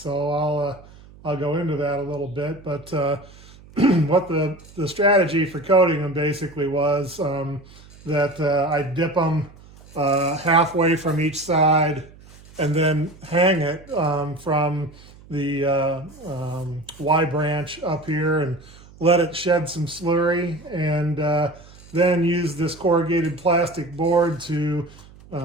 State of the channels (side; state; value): right; noise; hum, 22 dB below the sound